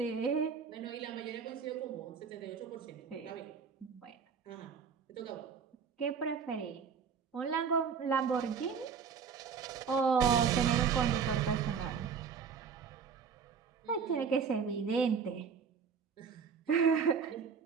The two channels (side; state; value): left; quieter; 6.4 dB